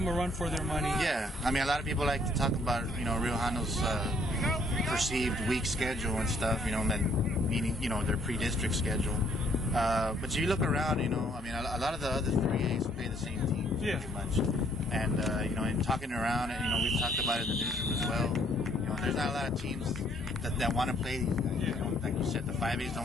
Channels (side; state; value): both; normal; correlation 0.65